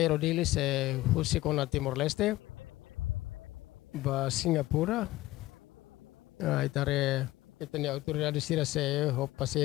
husi kona Timor Leste ba Singapura itare itani autoridade sira se ho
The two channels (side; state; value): right; quieter; 17.2 dB